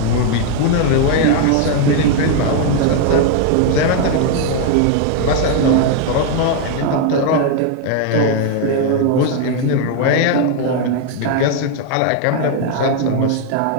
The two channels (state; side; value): different; both; correlation 0.00